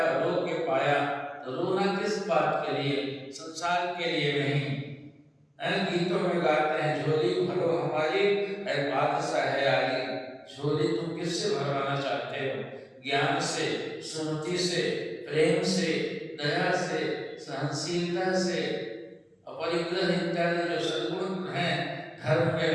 रो के पाया। तो रोना किस बात के लिए, संसार के लिए नहीं। गीतों में गाते हैं, झोली भरो हमारी है बादशाह है आगे। झोली तुम किससे भरवाना चाहते हो, ज्ञान से, सुमति से, प्रेम से, दया से, सहनशीलता से, अपरिग्रह इत्यादि जो सद्गुण हैं धर्म के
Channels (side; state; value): both; identical; correlation 1.00